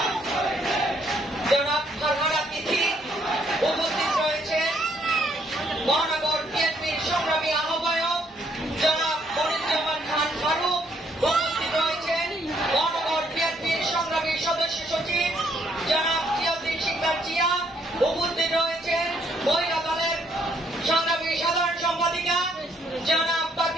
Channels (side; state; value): both; normal; correlation 0.69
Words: জনাব ফারহানা তিথি, উপস্থিত রয়েছে মহানগর বিএনপির সংগ্রামী আহ্বায়ক জনাব মনিরুজ্জামান খান ফারুক, উপস্থিত রয়েছেন মহানগর বিএনপির সংগ্রামী সদস্য সচিব জনাব জিয়াউদ্দিন শিকদার জিয়া, উপস্থিত রয়েছেন মহিলা দলের সংগ্রামী সাধারণ সম্পাদিকা জনাব